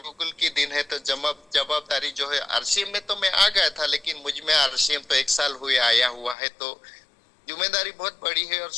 की दिन है, तो जवाबदारी जो है, आरसीएम में तो मैं आ गया था, लेकिन मुझ में आरसीएम तो 1 साल हुए आया हुआ है, तो जिम्मेदारी बहुत बड़ी है और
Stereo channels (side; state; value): right; drops out; at 6.4 s